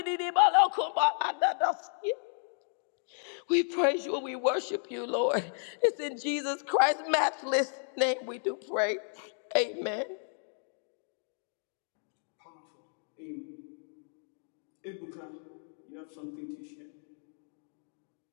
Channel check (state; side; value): silent; right; digital silence